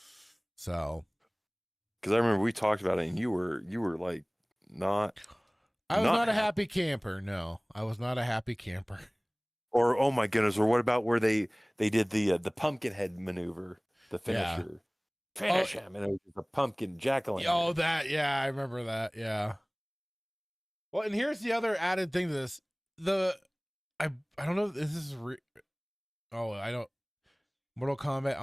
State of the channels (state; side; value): identical; both; correlation 1.00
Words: So, because I remember we talked about it, and you were like not. I was not a happy camper. No, I was not a happy camper. Or oh my goodness! Or what about where they did the pumpkin head maneuver, the finisher, finish him, and it was a pumpkin jack-o'-lantern. Oh, that I remember that. Yeah. Well, and here's the other added thing to this: I don't know if this is I don't. Mortal Kombat